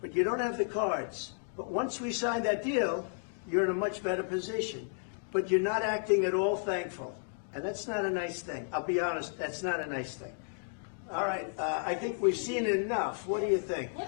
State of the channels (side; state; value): right; silent; digital silence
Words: But you don't have the cards. But once we sign that deal, you're in a much better position. But you're not acting at all thankful. And that's not a nice thing. I'll be honest, that's not a nice thing. All right, I think we've seen enough. What do you think?